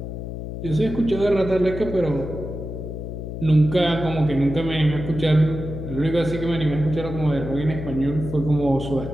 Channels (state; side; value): noise; left; hum, 7 dB below the sound